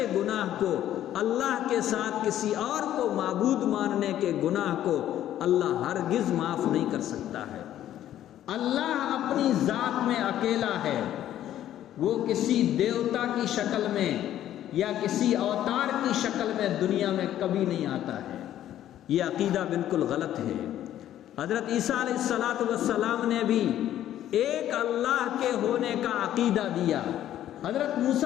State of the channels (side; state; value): right; quieter; 12.0 dB